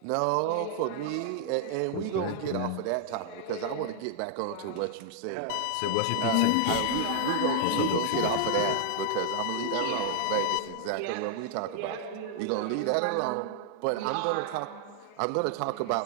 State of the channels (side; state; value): both; different; correlation 0.00